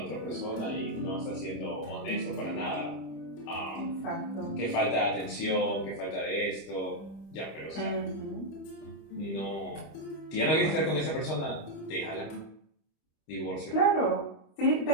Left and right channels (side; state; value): right; late; 26 ms